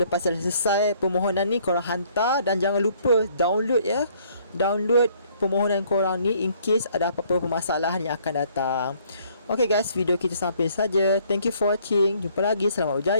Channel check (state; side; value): inverted; both; correlation -0.63